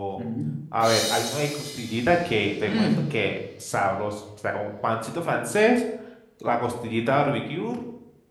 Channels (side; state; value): both; identical; correlation 1.00